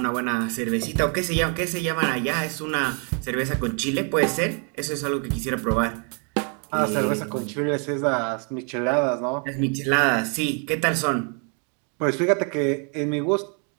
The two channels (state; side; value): quieter; left; 38.9 dB